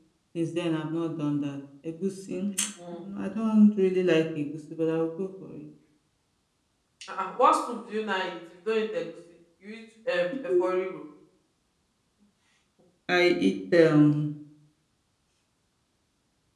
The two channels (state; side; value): identical; both; correlation 1.00